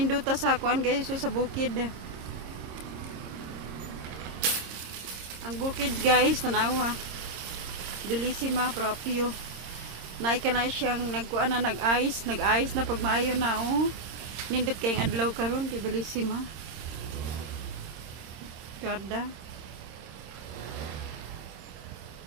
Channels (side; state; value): left; late; 26 ms